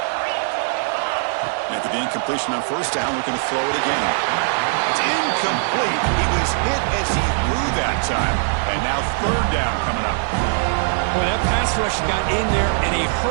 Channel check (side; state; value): left; silent; digital silence